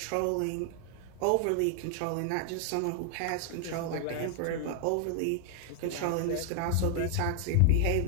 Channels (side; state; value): both; different; correlation 0.00